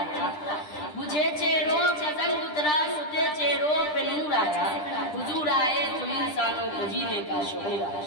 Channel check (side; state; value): right; late; 10 ms